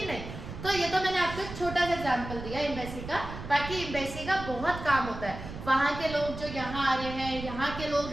नहीं। तो ये तो मैंने आपको एक छोटा सा एग्जाम्पल दिया एम्बेसी का, बाकी एम्बेसी का बहुत काम होता है। वहाँ के लोग जो यहाँ आ रहे हैं, यहाँ के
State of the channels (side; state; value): right; noise; rumble, 10 dB below the sound